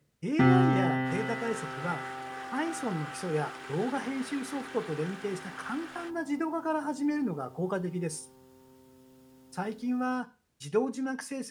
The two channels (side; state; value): both; identical; correlation 1.00